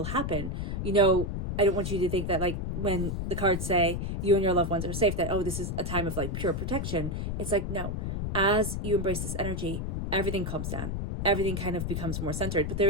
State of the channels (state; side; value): noise; left; rumble, 2 dB below the sound